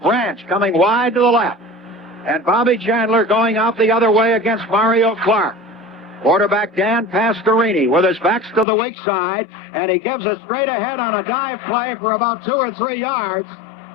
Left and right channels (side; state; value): right; drops out; at 8.7 s